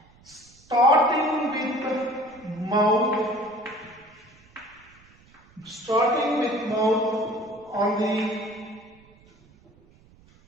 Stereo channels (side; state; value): right; noise; rumble, 28 dB below the sound